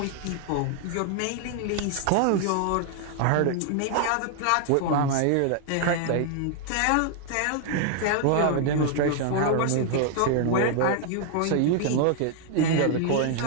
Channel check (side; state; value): both; different; correlation 0.00